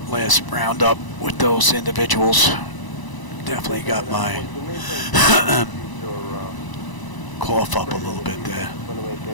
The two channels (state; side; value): late; right; 1.0 ms